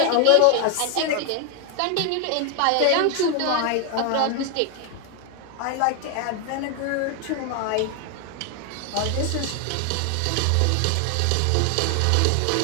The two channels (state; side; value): different; both; correlation 0.00